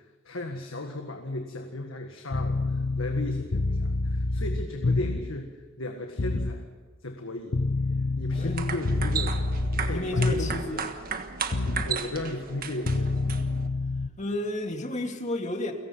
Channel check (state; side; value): normal; both; correlation 0.70